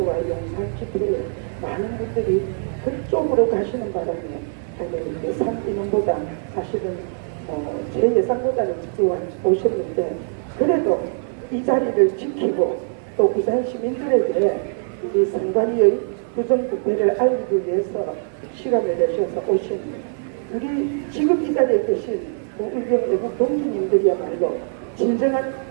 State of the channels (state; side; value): silent; left; 60 dB below the other